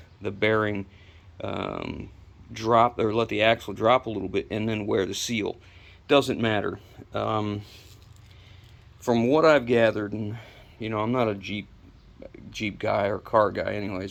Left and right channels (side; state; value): both; identical; correlation 1.00